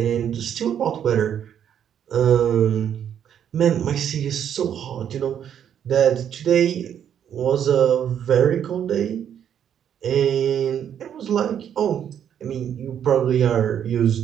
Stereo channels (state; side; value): quieter; left; 9.2 dB